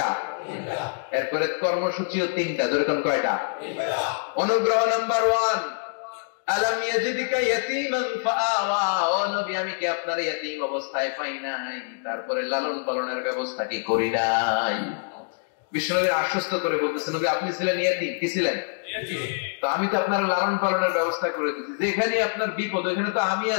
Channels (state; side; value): silent; right; digital silence